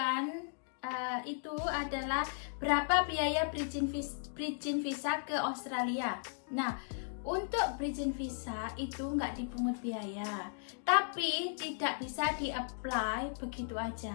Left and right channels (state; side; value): silent; right; digital silence